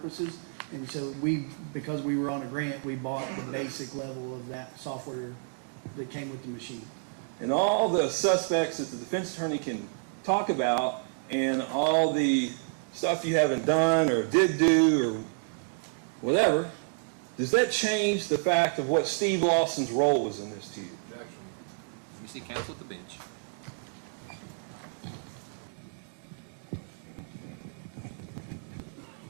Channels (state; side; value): silent; left; digital silence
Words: And so because we were on a grant, we bought the basic level of that software that came with the machine. And all the suspects that the defense attorney can talk about and all the stuff you haven't done or did do or whatever, does that change the fact of what Steve Lawson's role was in this to you? Objection. We see counsel at the bench.